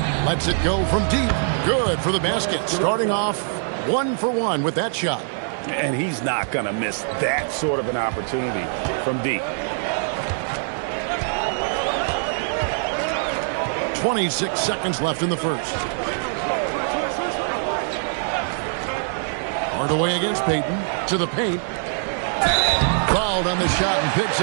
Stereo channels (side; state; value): left; silent; digital silence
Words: Lets it go from deep. Good for the basket. Starting off 1 for 1 with that shot. And he's not going to miss that sort of an opportunity from deep. 26 seconds left in the first. Hardaway against Payton. To the paint. Fouled on the shot and picks